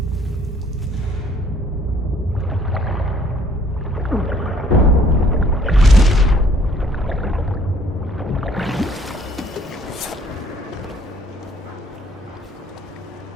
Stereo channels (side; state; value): both; normal; correlation 0.61